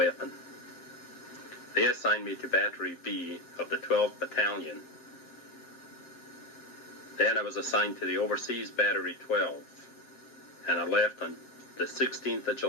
They assigned me to Battery B of the 12th Battalion. Then I was assigned to the Overseas Battery 12, and I left on the 16th of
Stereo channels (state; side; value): late; right; 7.5 ms